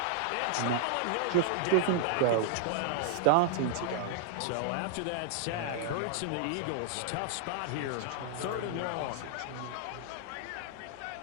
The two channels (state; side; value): different; both; correlation -0.01